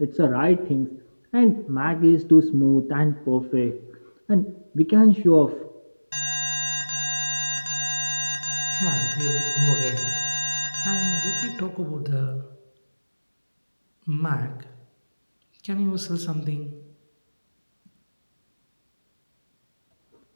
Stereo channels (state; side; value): inverted; both; correlation -1.00